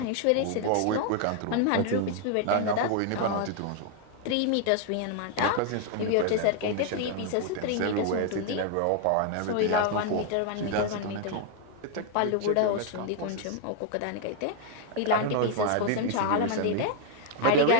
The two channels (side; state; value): both; different; correlation 0.00